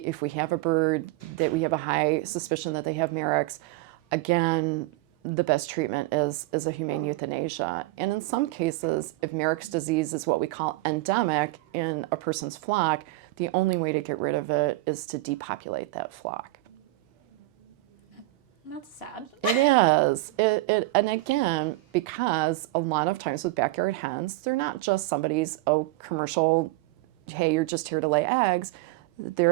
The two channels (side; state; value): left; quieter; 18.8 dB